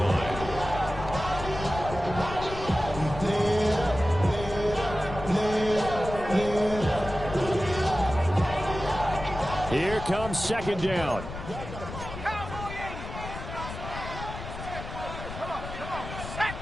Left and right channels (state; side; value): noise; left; rumble, 9 dB below the sound